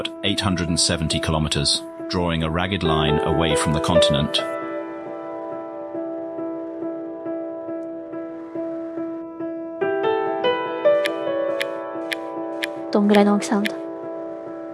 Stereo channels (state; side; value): identical; both; correlation 1.00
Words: 870 kilometers, drawing a ragged line away from the continent. どんぐらいの大きさなんだ。